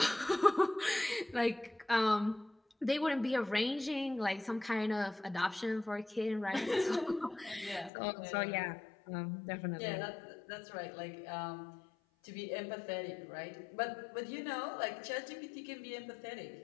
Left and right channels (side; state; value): right; drops out; at 7.9 s